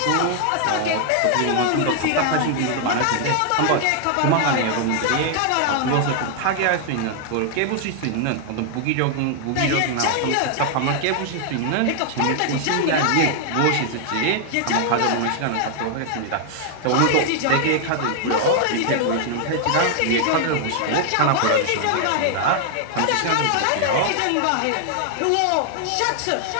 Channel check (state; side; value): different; both; correlation 0.00